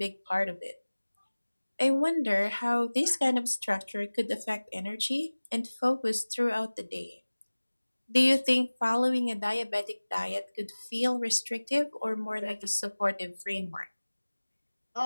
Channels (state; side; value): inverted; both; correlation -1.00